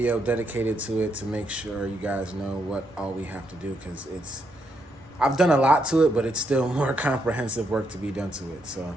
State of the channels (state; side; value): normal; both; correlation 0.79